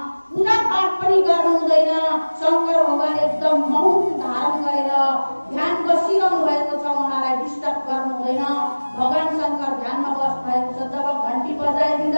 पूजा पाठ पनि गर्नु हुँदैन। शङ्कर भगवान एकदम मौन धारण गरेर ध्यान बसिरहनु भएको छ, उहाँलाई डिस्टर्ब गर्नु हुँदैन। भगवान शङ्कर ध्यानमा बस्नु भएको छ। जब घन्टी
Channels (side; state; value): both; inverted; correlation -1.00